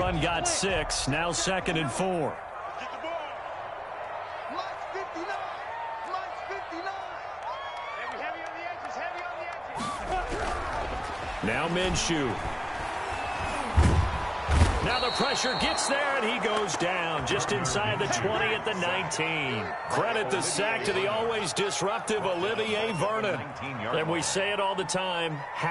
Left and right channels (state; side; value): identical; both; correlation 1.00